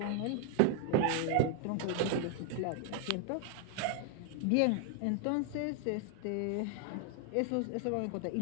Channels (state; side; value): different; both; correlation 0.00